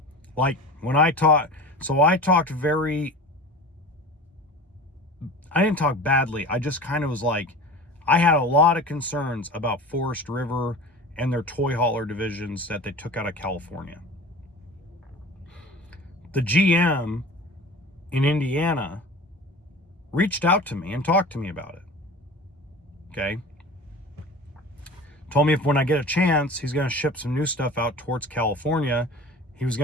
Like when I didn't talk badly. I just kind of was like, I had a lot of concerns about Forest River and their toy hauler divisions that they took out of California. the GM in Indiana reached out to me and talked to me about it. Okay. Told me if when I get a chance, he's going to ship some new stuff out towards California. He was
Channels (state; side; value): normal; both; correlation 0.37